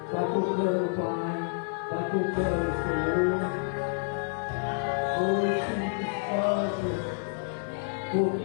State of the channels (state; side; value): silent; right; 59 dB below the other